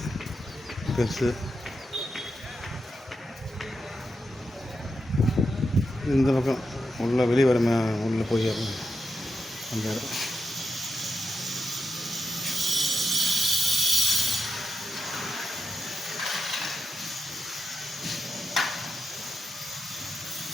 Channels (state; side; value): normal; both; correlation 0.86